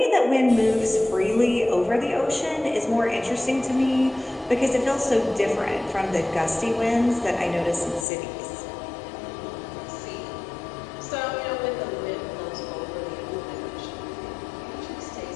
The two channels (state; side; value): drops out; right; at 8.1 s